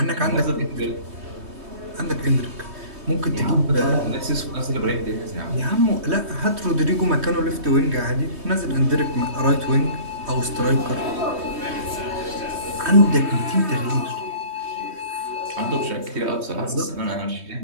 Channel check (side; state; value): left; late; 3.2 ms